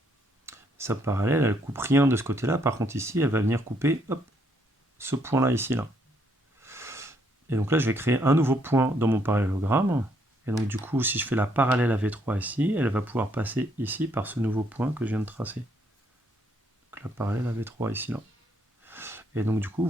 Sa parallèle, elle ne coupe rien de ce côté-là. Par contre, ici, elle va venir couper, hop, ce point-là, ici, là. Et donc là, je vais créer un nouveau point dans mon parallélogramme. Et donc du coup, si je fais la parallèle à V3 ici, elle va pouvoir passer ici par ce nouveau point que je viens de tracer. Donc la parallèle à V3 ici, là. Et donc du coup,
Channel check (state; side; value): normal; both; correlation 0.71